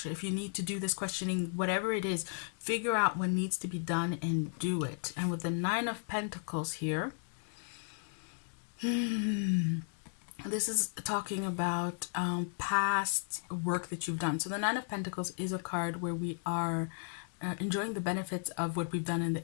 If you need to do this questioning, whatever it is, figure out what needs to be done and do it. And with the 9 of Pentacles here, this is talking about past work that you've done. So the 9 of Pentacles is a card where we are enjoying the benefits of what we've done in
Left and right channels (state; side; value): silent; right; digital silence